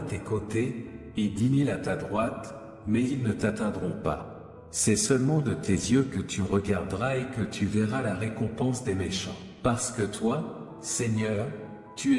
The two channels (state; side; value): identical; both; correlation 1.00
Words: tes côtés, et 10 000 à ta droite, mais ils ne t'atteindront pas. C'est seulement de tes yeux que tu regarderas et que tu verras la récompense des méchants. Parce que toi, Seigneur, tu